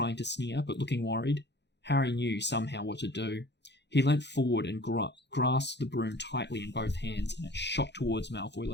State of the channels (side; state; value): right; late; 0.50 ms